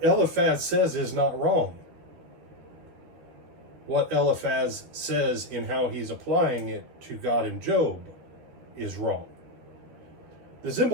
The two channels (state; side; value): late; left; 13 ms